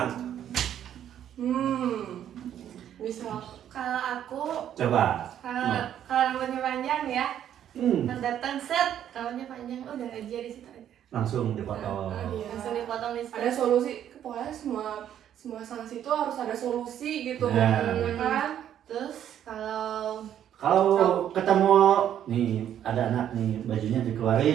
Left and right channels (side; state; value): left; quieter; 10.3 dB